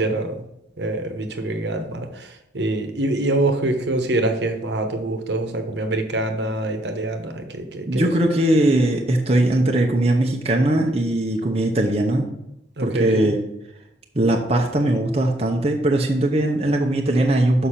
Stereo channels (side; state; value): both; normal; correlation 0.68